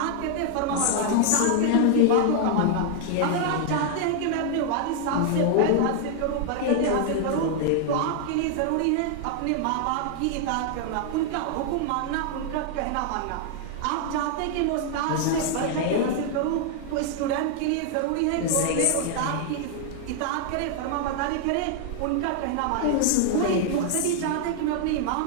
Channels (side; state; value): both; different; correlation 0.00